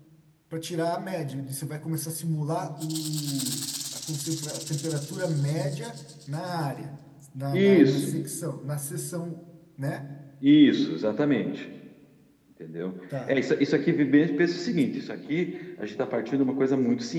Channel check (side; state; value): both; identical; correlation 1.00